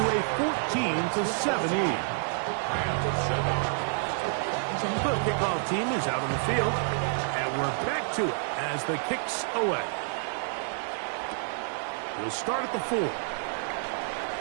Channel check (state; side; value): silent; left; 59 dB below the other